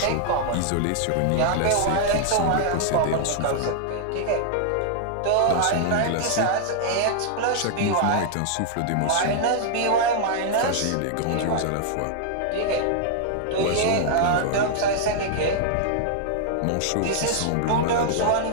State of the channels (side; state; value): both; different; correlation 0.00